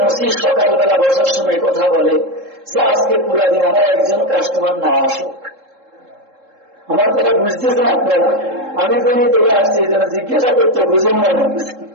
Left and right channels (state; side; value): late; left; 3.7 ms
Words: মসি সকালবেলা বসার সময় কথা বলে যে আজকে পুরা দিন আমার একজন কাস্টমার না আসুক, আমার কথা বুঝতেছেন আপনারা? আমি কোনই থেকে আসছি যেন জিজ্ঞাসা করতে বুঝেন না।